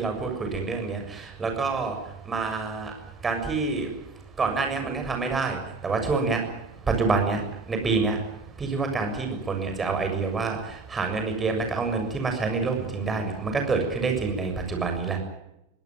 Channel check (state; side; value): quieter; left; 3.9 dB